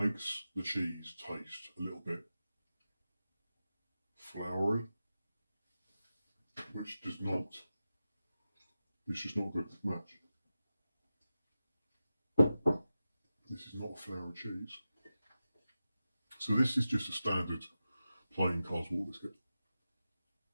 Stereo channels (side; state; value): both; inverted; correlation -0.93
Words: the cheese taste a little bit floury, which does not. It's just not a good match. This is not a flour cheese. So this is just a standard plain Carl's Wall biscuit.